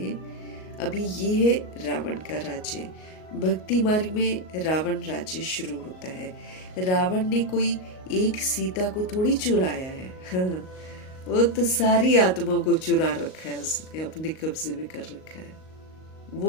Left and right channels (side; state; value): right; late; 38 ms